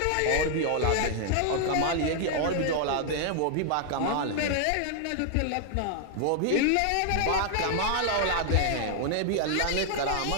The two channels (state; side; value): different; both; correlation 0.00